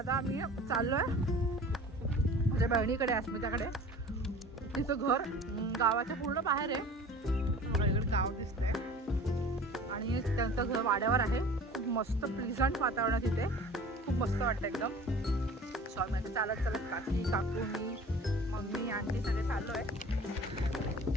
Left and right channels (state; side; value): normal; both; correlation 0.43